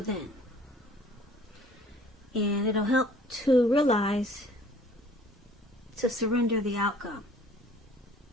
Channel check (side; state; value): both; normal; correlation 0.53